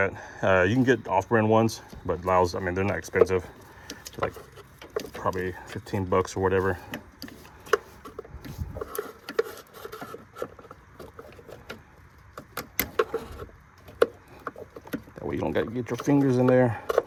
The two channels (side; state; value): both; identical; correlation 1.00